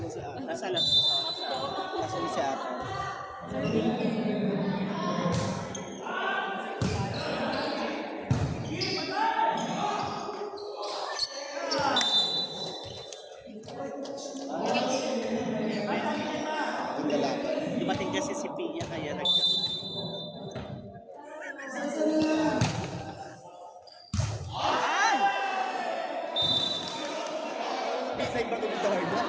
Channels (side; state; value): both; identical; correlation 1.00